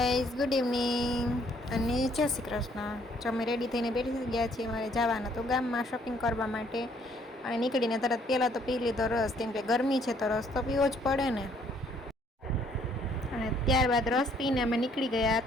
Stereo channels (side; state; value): both; normal; correlation 0.64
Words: ગુડ ઇવનિંગ અને જય શ્રી કૃષ્ણ. જો અમે રેડી થઈને બેઠી ગયા છીએ મારે જવાના તો ગામમાં શોપિંગ કરવા માટે. અને નીકળીને તરત પહેલાં તો પી લીધો રસ, કેમ કે ગરમી છે તો રસ તો પીવો જ પડે ને. અને ત્યારબાદ રસ પીને અમે નીકળી ગયા